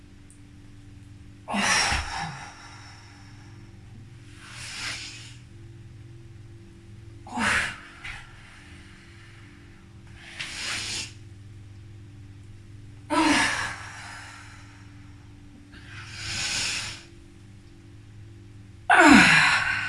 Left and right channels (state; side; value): identical; both; correlation 1.00